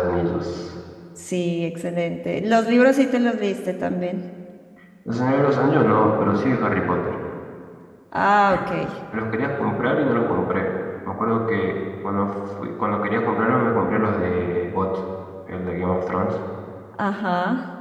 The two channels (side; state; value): both; identical; correlation 1.00